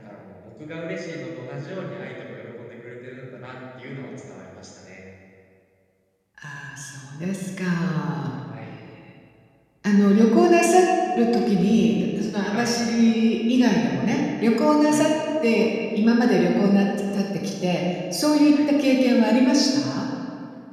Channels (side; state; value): both; identical; correlation 1.00